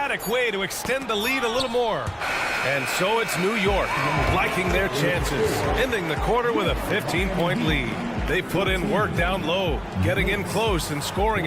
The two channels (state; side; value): identical; both; correlation 1.00